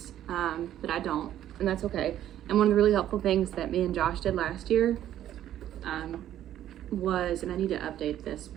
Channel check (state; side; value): quieter; left; 11.8 dB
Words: but I don't, and that's okay. And one of the really helpful things that me and Josh did last year was, and I need to update this,